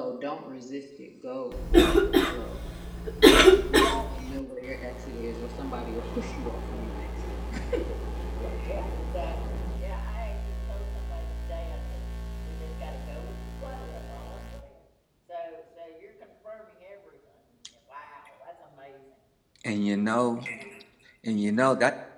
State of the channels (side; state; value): both; identical; correlation 1.00